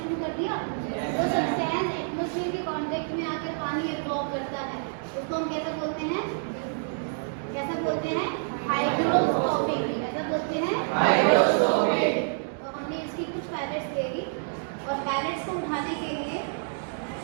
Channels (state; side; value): silent; left; digital silence